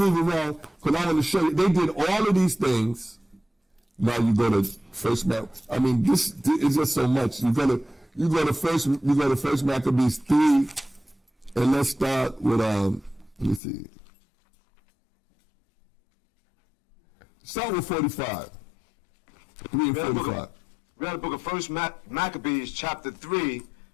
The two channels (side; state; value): right; drops out; at 13.6 s